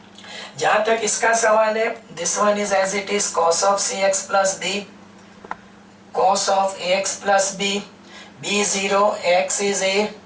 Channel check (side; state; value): both; identical; correlation 1.00